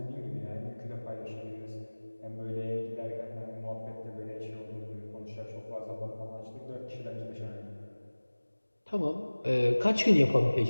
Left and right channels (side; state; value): both; inverted; correlation -1.00